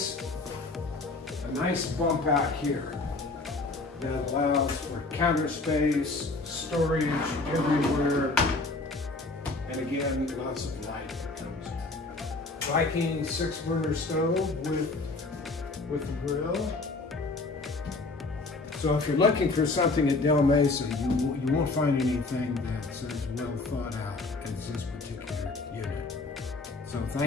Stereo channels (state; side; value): quieter; right; 3.4 dB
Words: nice bump out here that allows for counter space, storage everywhere, and again, lots of light that comes in. Viking 6-burner stove with the grill. So if you're looking for something at Del Mesa, you won't find anything that's as well thought out as this particular unit. So